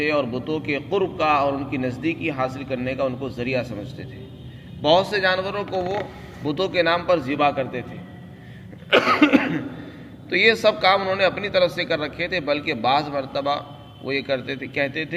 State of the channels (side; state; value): both; identical; correlation 1.00